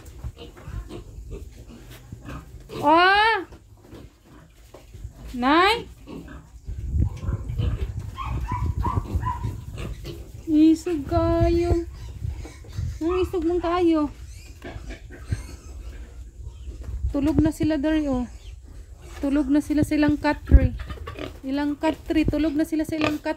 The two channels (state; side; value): identical; both; correlation 1.00